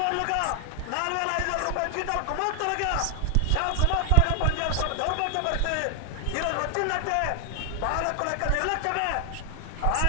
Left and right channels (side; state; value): both; different; correlation 0.00